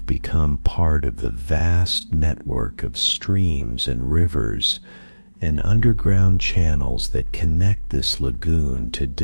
become part of the vast network of streams and rivers and underground channels that connect this lagoon to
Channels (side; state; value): both; inverted; correlation -1.00